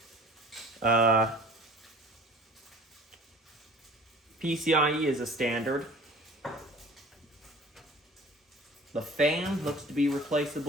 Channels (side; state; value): both; normal; correlation 0.46